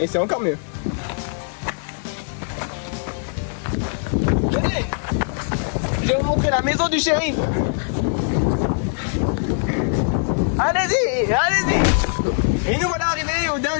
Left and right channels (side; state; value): right; silent; 65 dB below the other